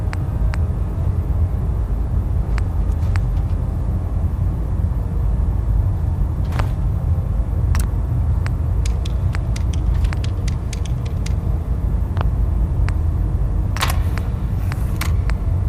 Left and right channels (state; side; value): identical; both; correlation 1.00